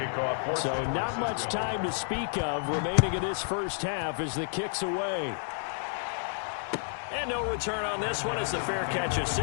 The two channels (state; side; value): silent; right; digital silence